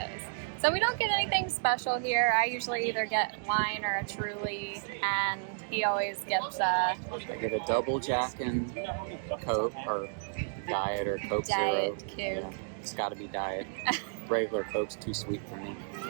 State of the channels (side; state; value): left; silent; digital silence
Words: So we don't get anything special here. I usually either get wine or a Truly, and he always gets I get a double Jack and Coke, or Diet or Coke Diet Zero. Coke. Yeah, it's got to be Diet. Regular Coke's too sweet for me.